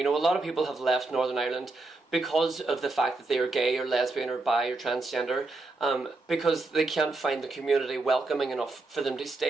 know, a lot of people have left Northern Ireland because of the fact that they are gay or lesbian or bi or transgender, because they can't find the community welcoming enough for them to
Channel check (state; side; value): quieter; left; 3.2 dB